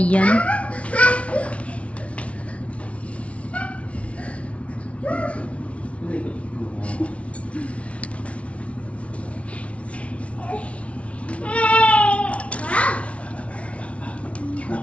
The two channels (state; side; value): late; right; 0.063 ms